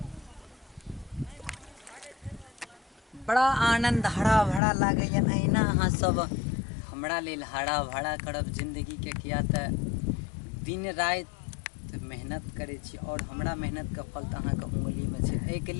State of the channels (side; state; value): right; drops out; at 4.6 s